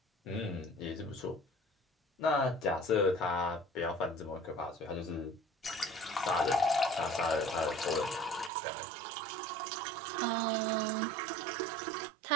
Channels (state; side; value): drops out; left; at 8.5 s